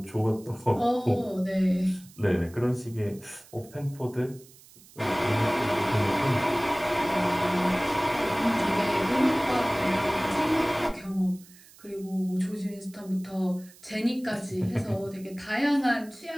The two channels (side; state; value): right; noise; hiss, 24 dB below the sound